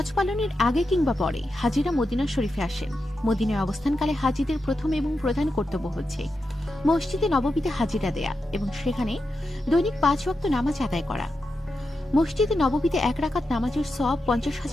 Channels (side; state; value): both; normal; correlation 0.88